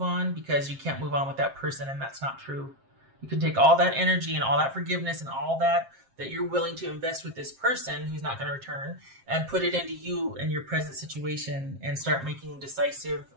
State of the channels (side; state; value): left; late; 7.5 ms